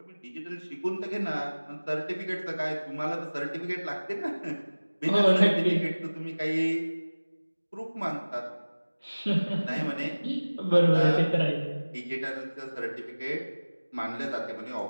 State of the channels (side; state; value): both; inverted; correlation -1.00